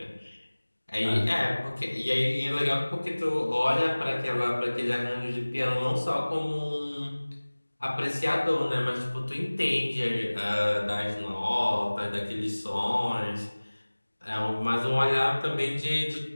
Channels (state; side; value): inverted; both; correlation -1.00